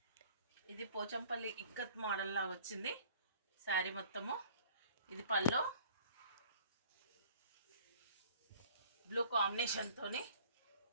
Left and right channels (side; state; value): both; inverted; correlation -0.52